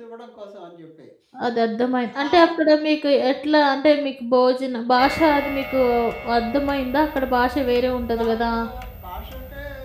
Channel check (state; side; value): identical; both; correlation 1.00